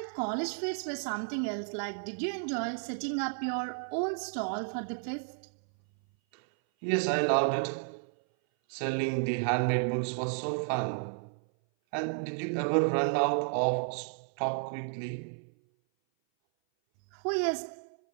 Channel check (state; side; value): silent; left; 56 dB below the other